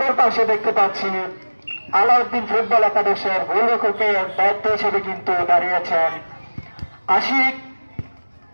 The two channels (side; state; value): both; inverted; correlation -1.00